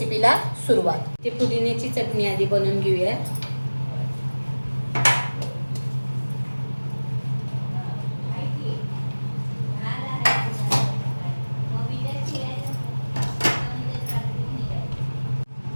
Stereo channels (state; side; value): inverted; both; correlation -1.00